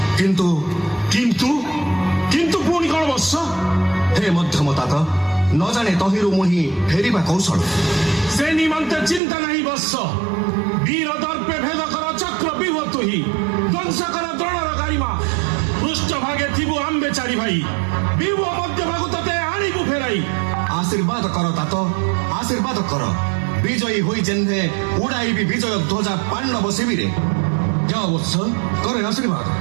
କିନ୍ତୁ କିନ୍ତୁ ପୁଣି କଣ ବତ୍ସ? ହେ ମଧ୍ୟମ तात, ନ ଜାଣେ ତହିଁରୁ ମୁହିଁ ଫେରିବା କୌଶଳ। ସେ ନିମନ୍ତେ ଚିନ୍ତା ନାହିଁ ବତ୍ସ। ବୀର ଦର୍ପେ ଭେଦ କର ଚକ୍ରବ୍ୟୁହ ତୁହି, ଧ୍ୱଂସ କର ଦ୍ରୋଣର ଗାରିମା। ପୃଷ୍ଠ ଭାଗେ ଥିବୁ ଆମ୍ବେ ଚାରି ଭାଇ, ବିଭୁ ମଧ୍ୟ ଭାଗୁ ତତେ ଆଣିବୁ ଫେରାଇ। ଆଶୀର୍ବାଦ କର तात, ଆଶୀର୍ବାଦ କର। ବିଜୟୀ ହୋଇ ଯେହ୍ନେ ଉଡ଼ାଇବି ବିଜୟ ଧ୍ୱଜା ପାଣ୍ଡବ ଶିବିରେ। ଯାଅ ବତ୍ସ, କରେ ଆଶୀର୍ବାଦ।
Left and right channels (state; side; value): drops out; left; at 9.2 s